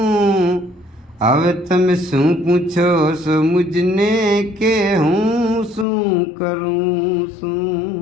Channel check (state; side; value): drops out; right; at 5.9 s